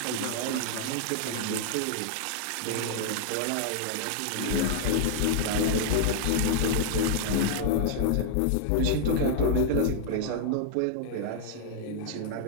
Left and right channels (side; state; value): both; different; correlation 0.00